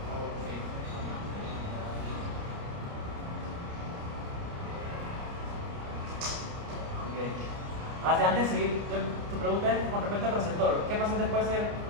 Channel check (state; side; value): late; left; 29 ms